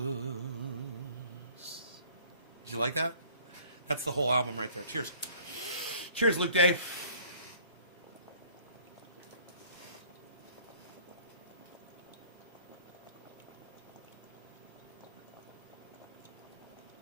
Did you like that? That's the whole album right there. Cheers. Cheers, Luke Day.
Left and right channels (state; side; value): inverted; both; correlation -0.54